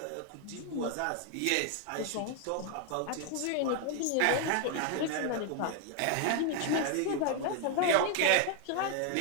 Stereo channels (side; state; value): both; different; correlation 0.00